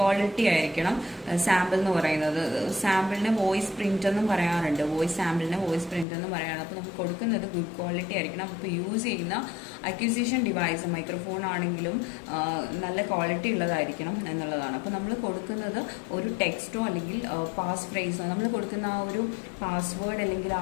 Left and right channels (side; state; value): right; drops out; at 6.1 s